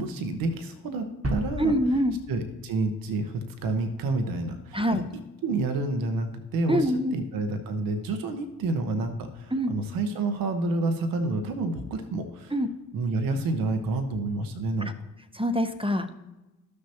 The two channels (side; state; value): both; normal; correlation 0.57